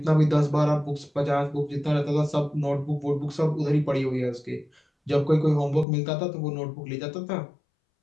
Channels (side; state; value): right; drops out; at 5.9 s